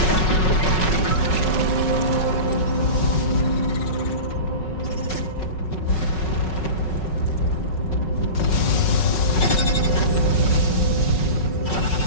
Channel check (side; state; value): right; late; 5.4 ms